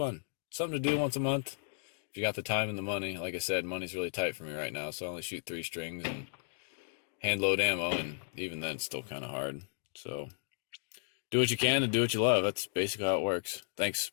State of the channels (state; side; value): silent; right; digital silence